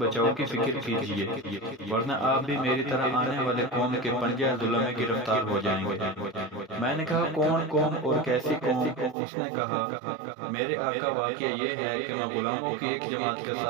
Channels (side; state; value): left; drops out; at 9.2 s